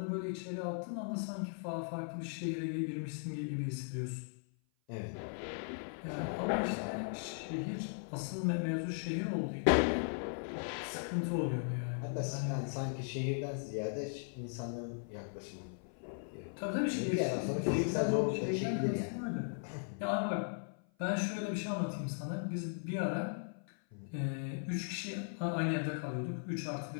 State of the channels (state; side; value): silent; right; 53 dB below the other